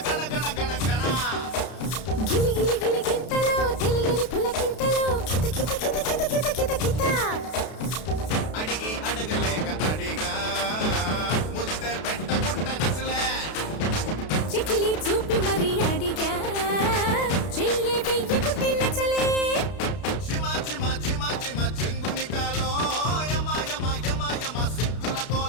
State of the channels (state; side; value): late; right; 32 ms